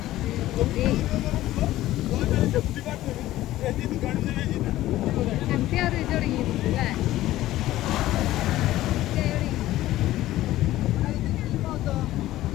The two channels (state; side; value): quieter; right; 15.2 dB